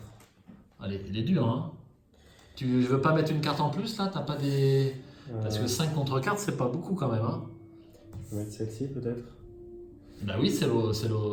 Allez, il est dur, hein. Tu veux pas mettre une carte en plus, là? T'as pas des... Parce que 5 contre 4, c'est pas beaucoup quand même, hein. Je vais mettre celle-ci peut-être. Bah oui, c'est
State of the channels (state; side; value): identical; both; correlation 1.00